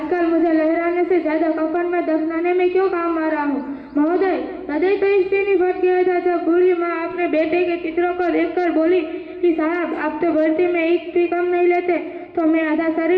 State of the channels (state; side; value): identical; both; correlation 1.00